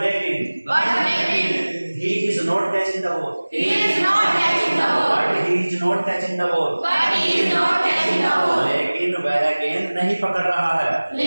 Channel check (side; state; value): both; inverted; correlation -1.00